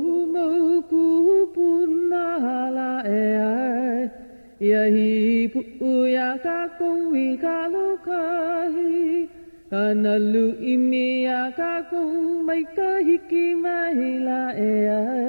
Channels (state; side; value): inverted; both; correlation -1.00